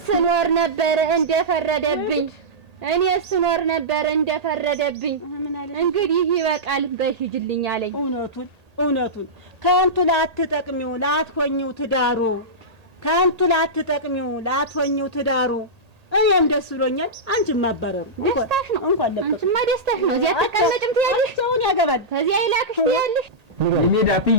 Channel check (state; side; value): late; left; 1.8 ms